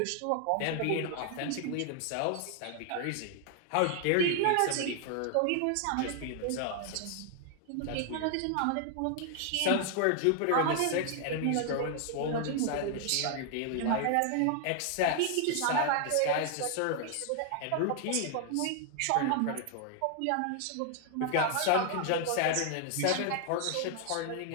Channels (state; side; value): different; both; correlation 0.00